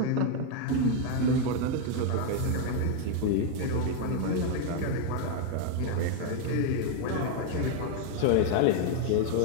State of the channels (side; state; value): both; different; correlation 0.00